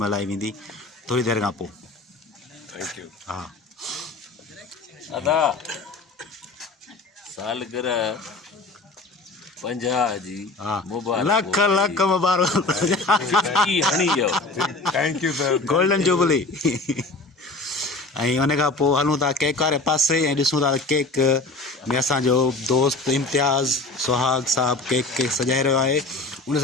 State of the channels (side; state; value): right; quieter; 3.3 dB